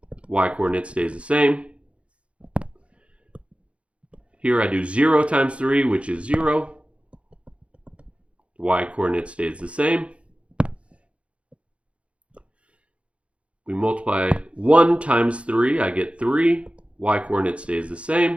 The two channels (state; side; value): late; left; 0.061 ms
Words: Y-coordinate stays the same. Here I do 0 times 3, which is 0. Y-coordinate stays the same. We multiply 1 times 3, I get 3. Y-coordinate stays the